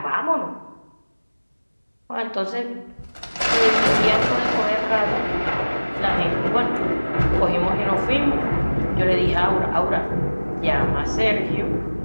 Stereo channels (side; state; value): both; inverted; correlation -1.00